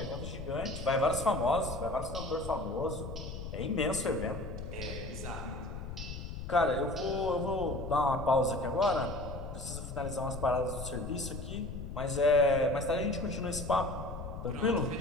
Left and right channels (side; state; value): left; noise; rumble, 8 dB below the sound